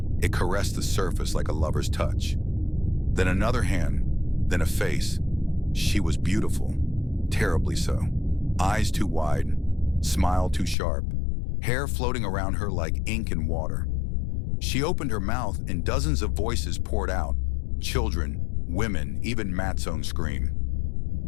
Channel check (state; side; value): drops out; right; at 10.8 s